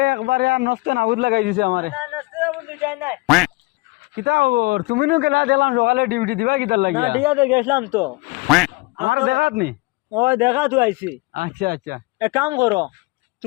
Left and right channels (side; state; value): right; quieter; 24.2 dB